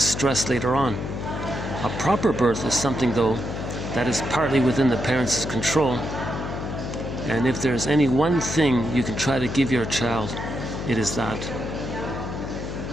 stress later on. A proper birth is something, though, that is partly within the parents' control. And if there's any one thing you can try to give your child, it is that.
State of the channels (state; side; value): noise; left; hum, 6 dB below the sound